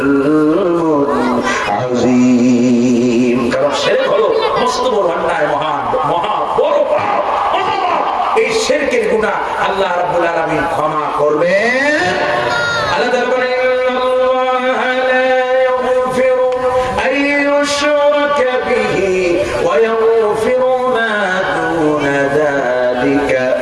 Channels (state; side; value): identical; both; correlation 1.00